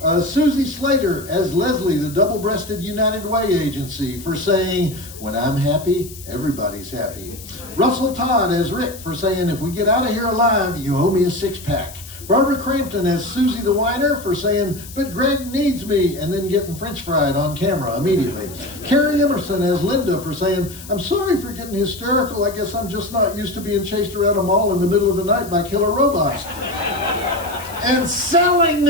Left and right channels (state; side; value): noise; left; hiss, 16 dB below the sound